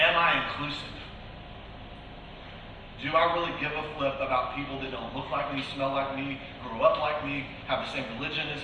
I inclusive? Do I really give a flip about people that don't look like me, smell like me, grow up like me, have the same religion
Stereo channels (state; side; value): identical; both; correlation 1.00